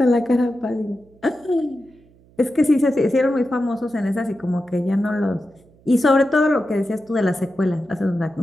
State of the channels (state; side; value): noise; right; hum, 29 dB below the sound